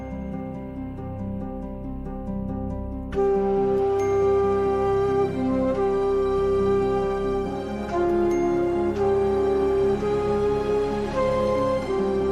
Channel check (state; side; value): identical; both; correlation 1.00